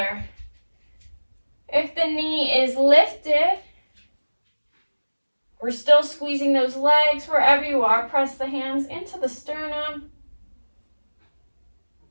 If the knee is lifted, we're still squeezing those legs. Wherever you are, press the hands into the sternum.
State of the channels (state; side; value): inverted; both; correlation -1.00